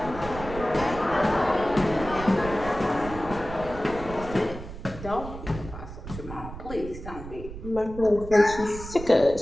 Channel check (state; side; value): noise; right; rumble, 11 dB below the sound